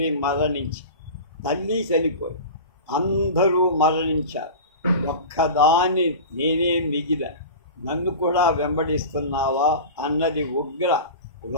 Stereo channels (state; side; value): inverted; both; correlation -0.31